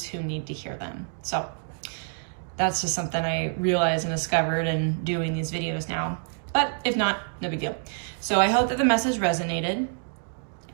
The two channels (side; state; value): left; silent; 60 dB below the other